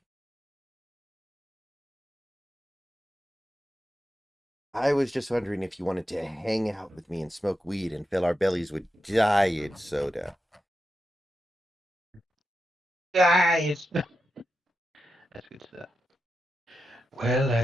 I was just wondering if you wanted to hang out with me and smoke weed and fill our bellies with diet soda. Guys! That's good stuff. Well,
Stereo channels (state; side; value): normal; both; correlation 0.89